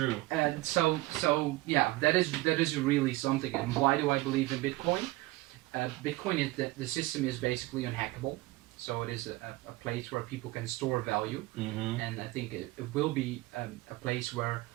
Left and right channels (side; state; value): left; quieter; 19.7 dB